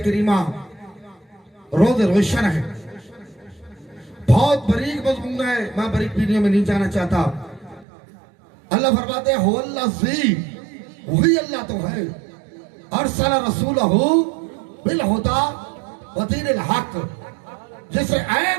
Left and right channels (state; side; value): drops out; left; at 7.9 s